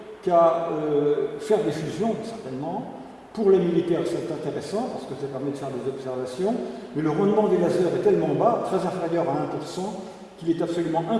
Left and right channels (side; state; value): both; identical; correlation 1.00